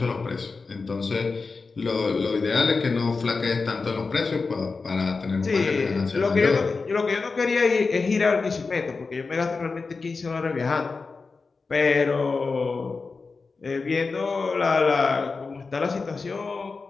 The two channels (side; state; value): right; quieter; 4.3 dB